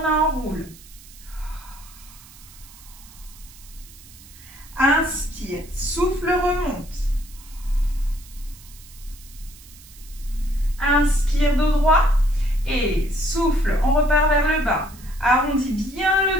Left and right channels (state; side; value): noise; right; hiss, 21 dB below the sound